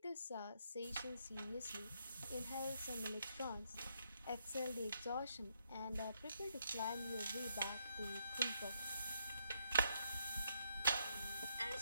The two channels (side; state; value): both; inverted; correlation -0.76